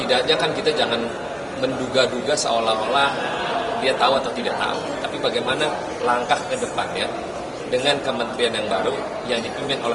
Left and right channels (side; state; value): both; identical; correlation 1.00